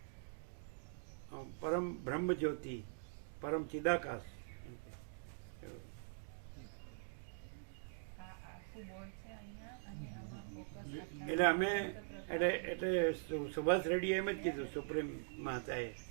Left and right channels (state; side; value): silent; left; digital silence